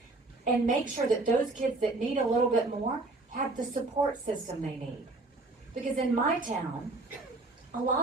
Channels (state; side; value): quieter; left; 3.2 dB